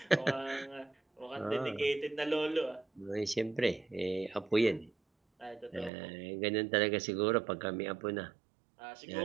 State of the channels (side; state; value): left; drops out; at 5.9 s